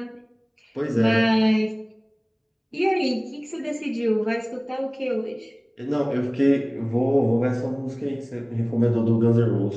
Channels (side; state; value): both; identical; correlation 1.00